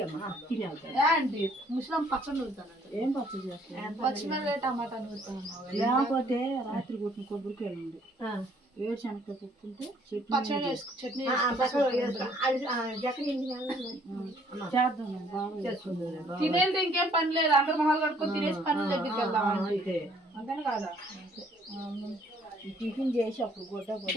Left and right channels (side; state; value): both; normal; correlation 0.62